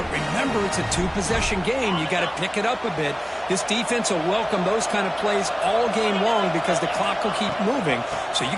remember, it's a 2-possession game. You got to pick it up a bit. This defense will welcome those kind of plays all game long because the clock will keep moving. So you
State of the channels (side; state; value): both; identical; correlation 1.00